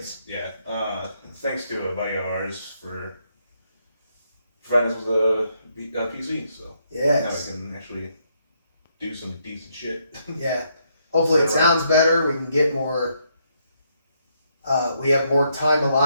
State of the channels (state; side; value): inverted; both; correlation -0.75